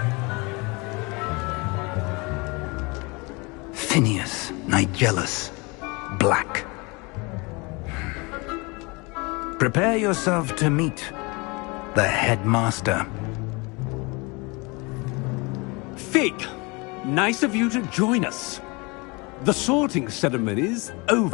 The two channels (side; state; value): right; quieter; 27.6 dB